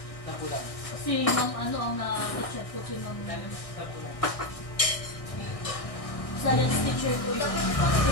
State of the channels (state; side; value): late; right; 1.6 ms